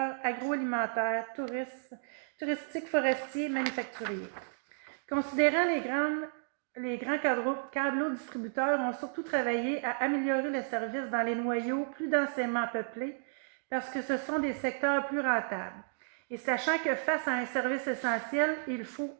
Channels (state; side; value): silent; left; digital silence